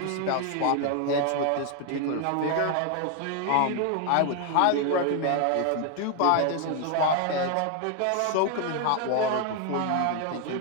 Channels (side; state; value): both; different; correlation 0.01